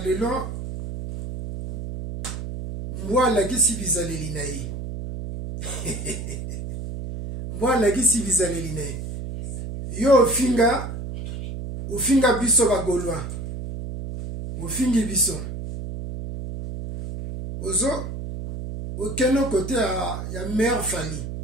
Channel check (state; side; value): noise; right; hum, 7 dB below the sound